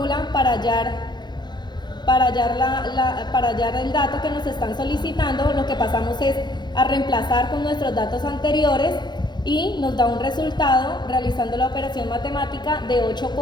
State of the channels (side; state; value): right; late; 0.21 ms